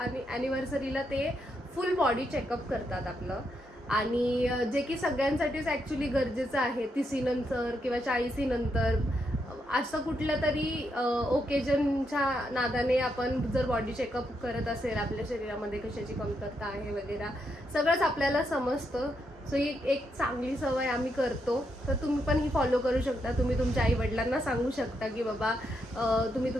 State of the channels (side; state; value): both; normal; correlation 0.80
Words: ॲनिव्हर्सरीला ते फुल बॉडी चेकअप करतात आपलं आणि जे की सगळ्यांसाठीच ॲक्च्युली गरजेचं आहे 30 नंतर किंवा 40 नंतर असं कुठलं तरी ओकेजनच्या नादाने आपण जर बॉडी चेकअप करत असेल आपल्या शरीरामध्ये कशाची कमतरता आहे वगैरे सगळंच आपल्याला समजतं सो ही एक चांगली सवय आम्ही करतो. तर तुम्ही पण ही फॉलो करू शकता. तुम्ही तुमच्या आईवडिलांना सांगू शकता की बाबा तुम्ही